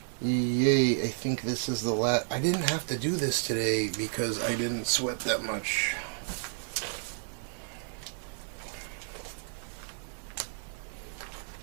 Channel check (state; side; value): silent; left; 57 dB below the other